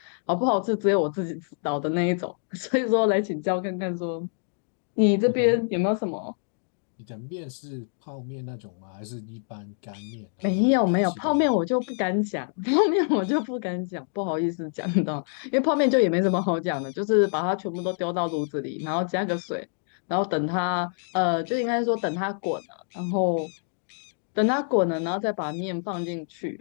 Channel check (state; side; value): silent; right; 61 dB below the other